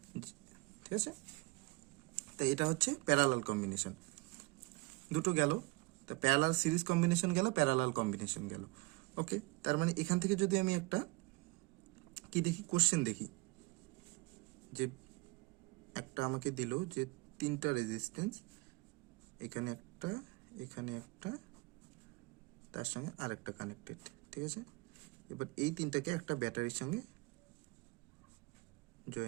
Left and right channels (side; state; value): left; quieter; 25.2 dB